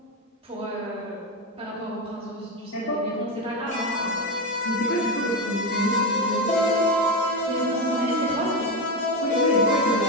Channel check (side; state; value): both; normal; correlation 0.15